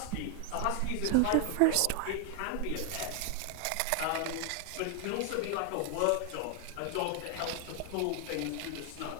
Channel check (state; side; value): different; both; correlation 0.00